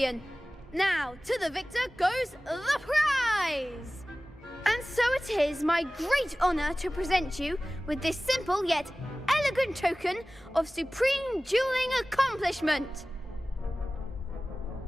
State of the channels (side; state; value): both; normal; correlation 0.98